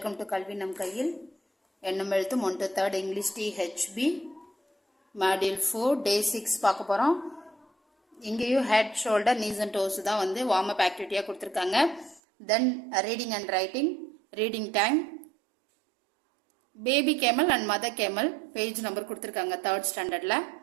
டு கல்வி நம் கையில். எண்ணம் எழுத்தும் 1 to 3rd English THB module 4 day 6 பார்க்க போகிறோம். இங்கேயும் head shoulder knees and toes தான் வந்து வார்ம் அப் ஆக்டிவிட்டியாக கொடுத்துருக்காங்க. Then reading and writing, reading time, baby camel and mother camel page number கொடுத்துருக்காங்க 3rd ஸ்டாண்டர்டில்.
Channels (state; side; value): drops out; left; at 12.2 s